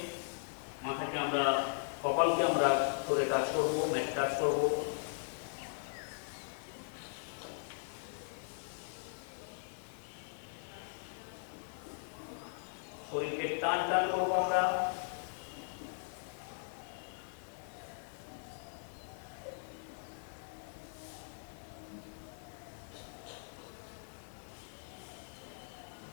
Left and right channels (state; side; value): silent; right; 52 dB below the other